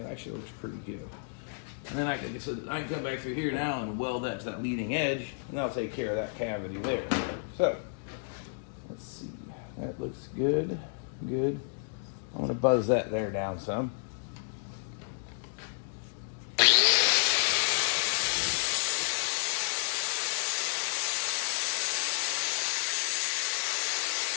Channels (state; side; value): silent; right; digital silence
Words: actually looks pretty good. And then I can come back through here now and weld that to that leading edge, and that'll take care of that cavity there. So let's see, that looks good. I'm gonna buzz that there down some.